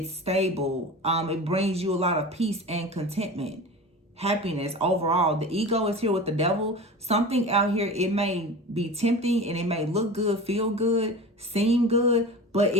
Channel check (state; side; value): normal; both; correlation 0.33